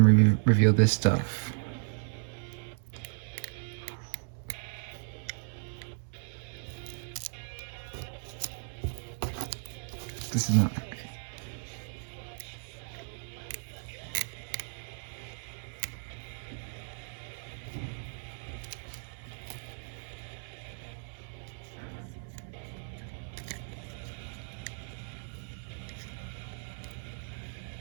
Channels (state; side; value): silent; left; digital silence